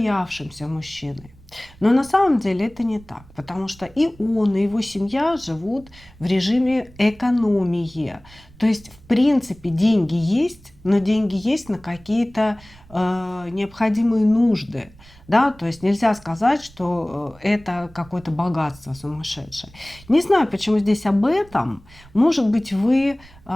мужчиной. Но на самом деле это не так, потому что и он, и его семья живут в режиме экономии. То есть, в принципе, деньги есть, но деньги есть на какие-то необходимые нужды. Да, то есть нельзя сказать, что это какое-то богатство сумасшедшее. Не знаю, почему здесь об этом. Может быть, вы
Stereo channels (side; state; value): right; noise; rumble, 24 dB below the sound